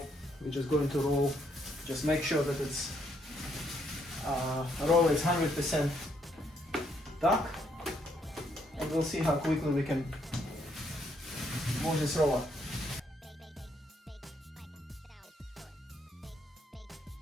We're just going to roll. Just make sure that it's roll is 100% dark, and we'll see how quickly we can move this roller.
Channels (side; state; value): both; normal; correlation 0.72